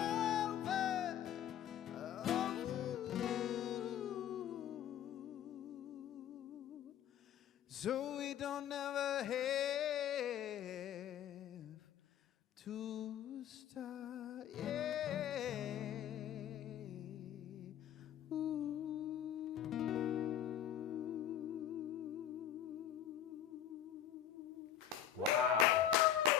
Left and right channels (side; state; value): right; quieter; 10.2 dB